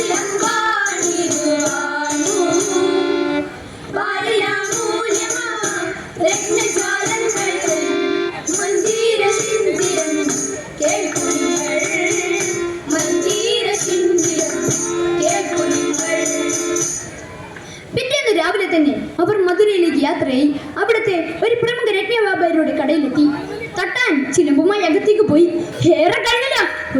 അവിടേക്ക് യാത്രയായി. അവിടുത്തെ ഒരു പ്രമുഖ രത്നവ്യാപാരിയുടെ കടയിലെത്തി. തട്ടാൻ ചിലമ്പുമായി അകത്തേക്ക് പോയി. ഏറെ കഴിഞ്ഞില്ല,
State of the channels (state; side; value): identical; both; correlation 1.00